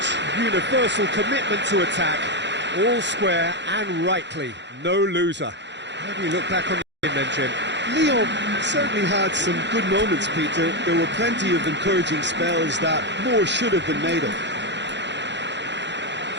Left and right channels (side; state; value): left; late; 0.52 ms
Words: Universal commitment to attack. All square and rightly, no loser. How do you look back on the game then, Jim? Lyon certainly had some good moments, Peter. There were plenty of encouraging spells that more should have been made of.